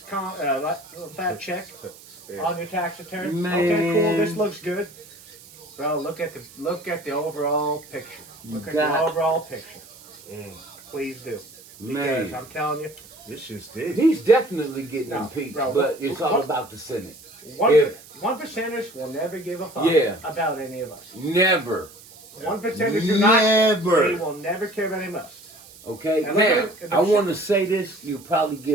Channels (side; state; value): right; noise; hiss, 21 dB below the sound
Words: check Yeah. on your tax return. Man. Okay, cool. This looks good. Bro, look at the overall picture. Look at got- the overall picture. Mm. Please do. Man. Because I'm telling you, This shit's deep. He's definitely getting No, impeached, bro, but it's all what- about the Senate. one If- one percenters will never give a fuck Yeah. about any of us. Never. 1%ers do not. Never. They will never care about any of us. Okay, And now, look at the I want to say this. You'll probably